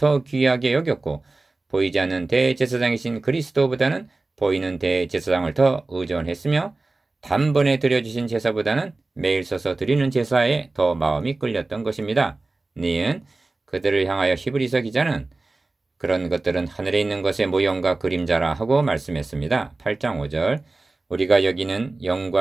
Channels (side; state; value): left; quieter; 3.3 dB